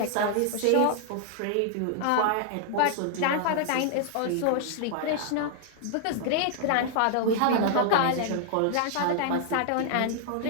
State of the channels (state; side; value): different; both; correlation -0.01